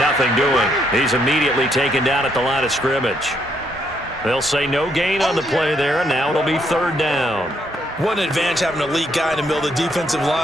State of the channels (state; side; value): normal; both; correlation 0.73